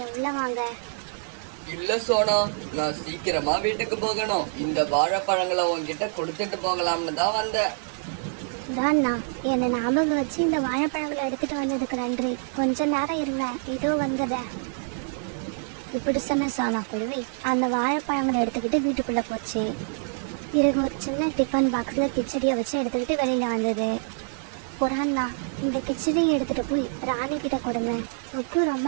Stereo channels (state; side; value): silent; left; digital silence